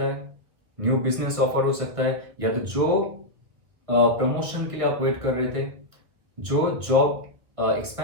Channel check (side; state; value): left; late; 1.8 ms